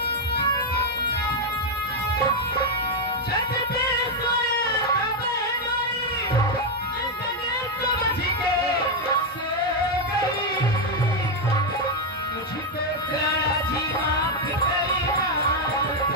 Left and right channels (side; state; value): both; normal; correlation 0.02